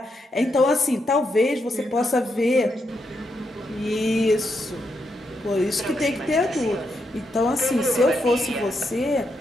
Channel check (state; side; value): normal; both; correlation 0.82